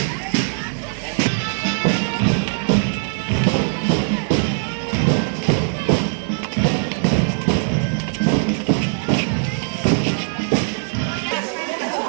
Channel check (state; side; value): silent; left; digital silence